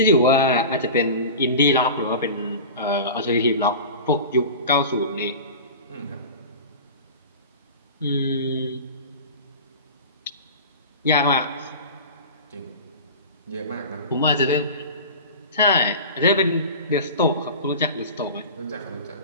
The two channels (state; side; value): inverted; both; correlation -0.33